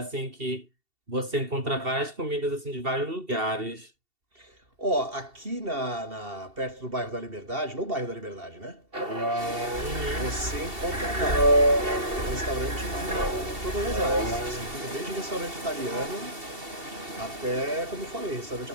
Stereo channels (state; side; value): late; left; 2.7 ms